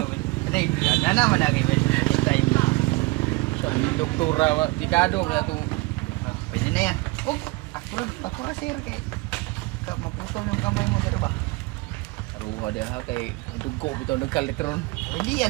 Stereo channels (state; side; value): quieter; left; 23.5 dB